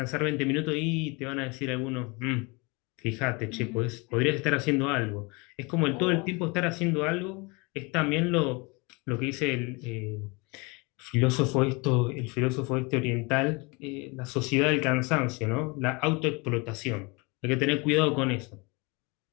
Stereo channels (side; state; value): right; quieter; 28.1 dB